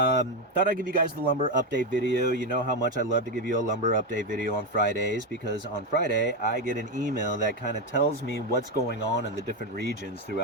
I'd give you guys the lumber update video. You know how much I love to give you a lumber update video on Fridays, because on Friday I get an email that kind of tells me what's going on in the different regions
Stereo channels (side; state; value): both; normal; correlation 0.09